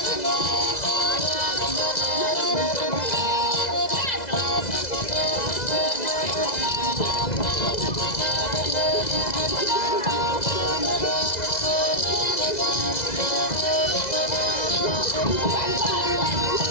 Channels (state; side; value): late; right; 2.0 ms